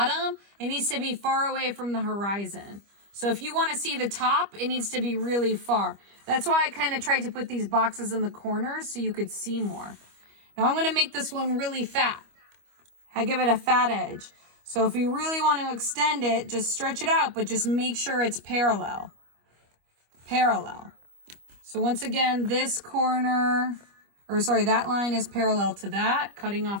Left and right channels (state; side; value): late; left; 25 ms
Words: it needs to be far away from the horizon. So if you want to see the top, it needs to be really far. That's why I kind of tried to put these boxes in the corners so you could see more. Now I'm going to make this one really fat. I give it a fat edge. So if you really want to extend it, just stretch it out, but just make sure it's parallel. Parallel. So once again, this corner, or sorry, that line is parallel to that, cutting